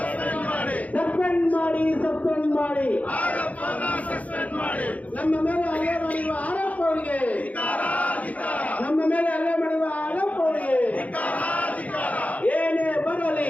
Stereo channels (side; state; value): right; late; 0.071 ms